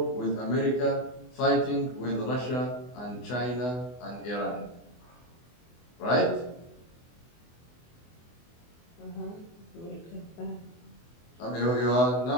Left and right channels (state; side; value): late; right; 24 ms